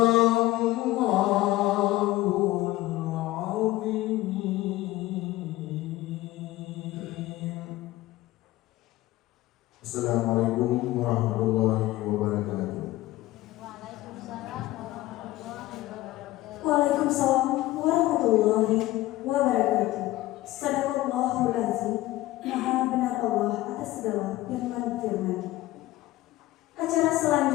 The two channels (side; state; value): right; quieter; 17.1 dB